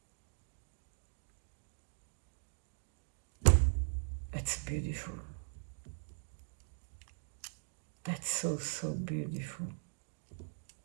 That's beautiful. That's so, so beautiful.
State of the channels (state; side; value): silent; left; digital silence